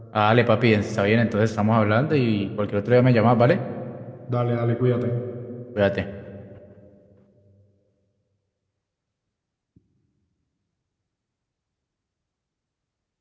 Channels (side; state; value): both; identical; correlation 1.00